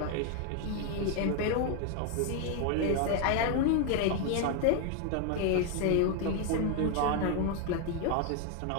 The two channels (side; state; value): both; different; correlation 0.01